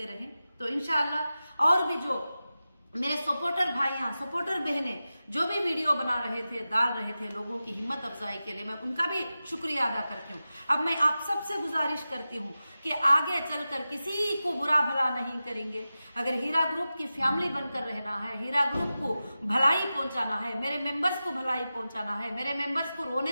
रहें। तो इंशाअल्लाह और भी जो मेरे सपोर्टर भाइयां, सपोर्टर बहनें जो भी वीडियो बना रहे थे, डाल रहे थे लोगों की हिम्मत अफजाई के लिए, मैं उनका भी शुक्रिया अदा करती हूँ। अब मैं आप सबसे गुजारिश करती हूँ कि आगे चलकर किसी को बुरा भला नहीं करेंगे। अगर हीरा ग्रुप की फैमिली बनकर रहना है, हीरा ग्रुप को भलाई पहुंचाना है, मेरे मेंबर्स को भलाई पहुंचाना है, मेरे मेंबर्स को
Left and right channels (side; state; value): both; inverted; correlation -0.94